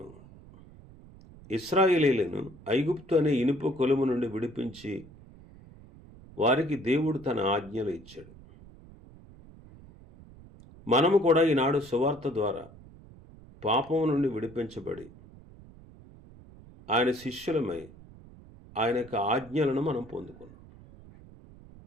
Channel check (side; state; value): right; noise; rumble, 21 dB below the sound